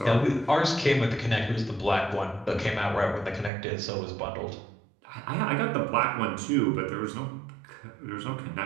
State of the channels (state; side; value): drops out; left; at 3.5 s